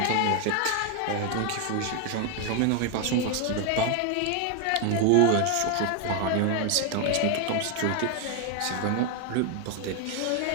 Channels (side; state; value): both; different; correlation 0.01